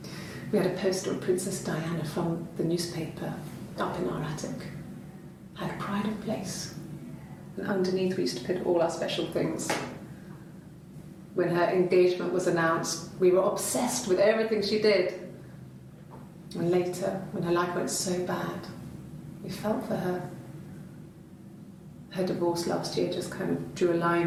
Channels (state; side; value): identical; both; correlation 1.00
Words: We had a poster of Princess Diana from the newspaper up in our attic. Had a pride of place. And underneath we used to put all our special things. When her engagement was announced, we were obsessed with everything she did. And later, when her life went so bad, we felt for her. Her divorce last year just kind of drew a line